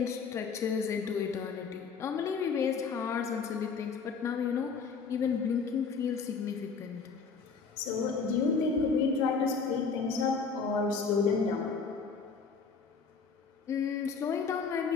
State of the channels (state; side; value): quieter; right; 5.3 dB